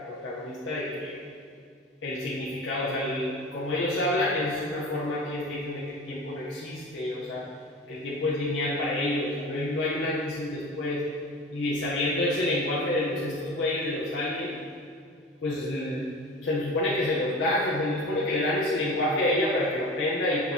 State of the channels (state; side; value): normal; both; correlation 0.34